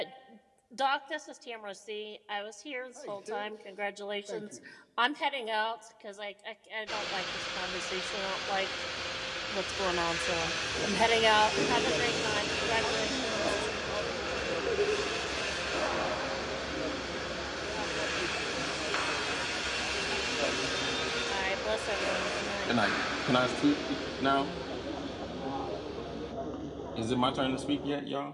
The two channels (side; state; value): both; identical; correlation 1.00